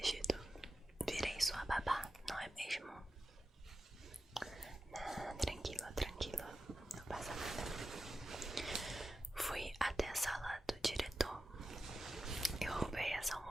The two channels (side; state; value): both; normal; correlation 0.92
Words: Virei sua babá, não é mesmo? Tranquilo, não passa nada. Fui até a sala do diretor. Eu roubei essa